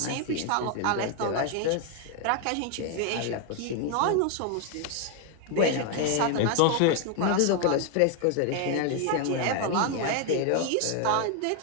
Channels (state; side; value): different; both; correlation 0.01